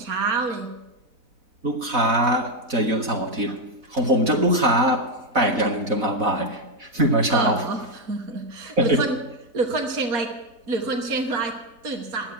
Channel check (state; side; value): late; left; 4.0 ms